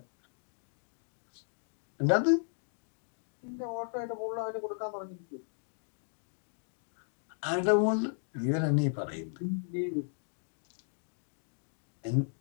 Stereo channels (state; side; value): silent; right; digital silence